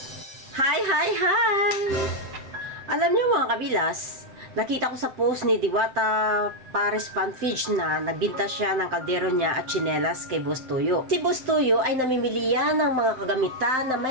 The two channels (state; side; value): late; left; 7.6 ms